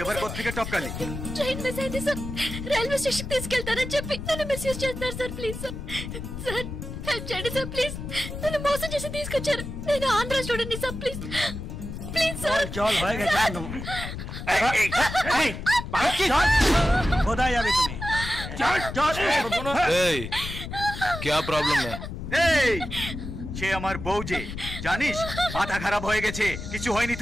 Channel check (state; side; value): noise; left; rumble, 8 dB below the sound